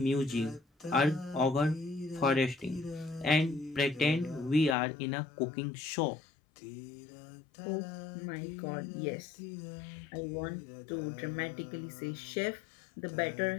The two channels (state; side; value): drops out; right; at 4.8 s